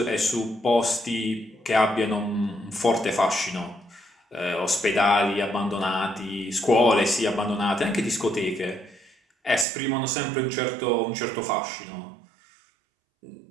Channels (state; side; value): drops out; left; at 9.7 s